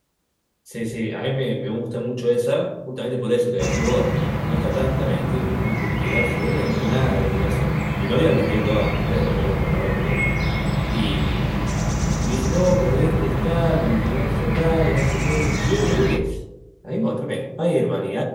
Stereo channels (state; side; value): identical; both; correlation 1.00